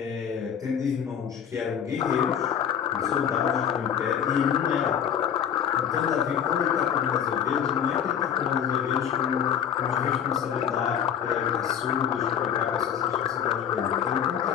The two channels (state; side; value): quieter; right; 8.8 dB